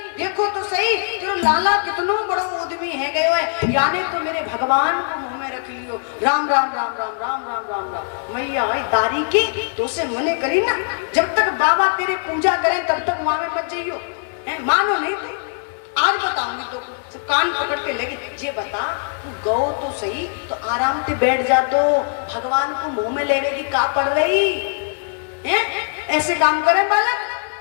देखो तो सही, तेरे लाला कितनो बड़ो उद्यमी है गए हुए, यानी तो मेरे भगवान को मुंह में रख लियो, राम राम राम राम राम राम राम राम। मैया दारी की तो से मने करी ना, जब तक बाबा तेरे पूजा करे तब तक वहां में मत जाइयो, मानो नहीं तू, आज बताऊंगी तो कान पकड़ के लगी। ये बता, तू गौ तो सही तो आराम से बैठ जा, तो भगवान को मुंह में लेवे की का पड़ रही है? ऐसे काम करे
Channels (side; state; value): right; silent; 65 dB below the other